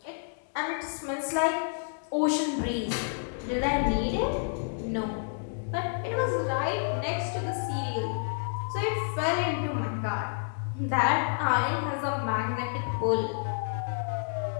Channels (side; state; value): right; silent; digital silence